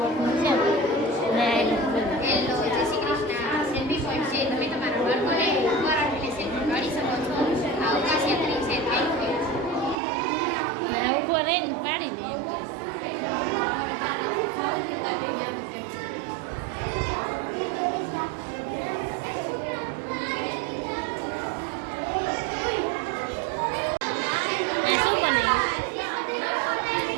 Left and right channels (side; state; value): left; drops out; at 10.0 s